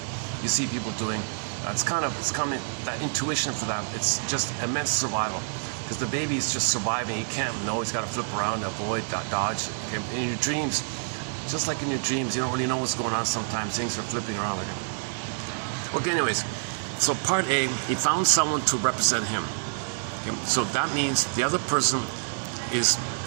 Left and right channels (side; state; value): left; silent; 56 dB below the other